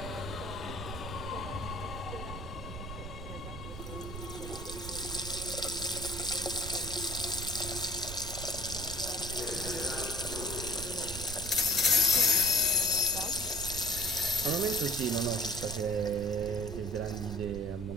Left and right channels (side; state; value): right; noise; rumble, 9 dB below the sound